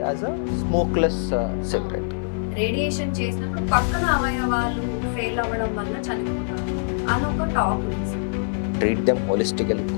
a smokeless cigarette. Radiation చేసినప్పుడు పక్కన అవయవాలు fail అవ్వడం వల్ల చనిపోతారు అని ఒక టాక్ ఉంది. Treat them holistically.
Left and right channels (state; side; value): silent; right; digital silence